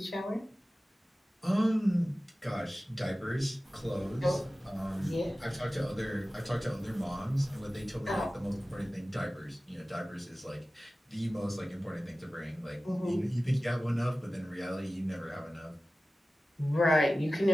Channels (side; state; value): both; normal; correlation 0.96